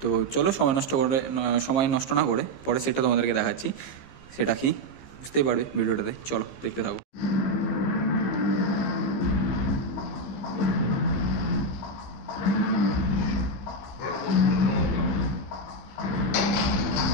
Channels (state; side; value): late; right; 15 ms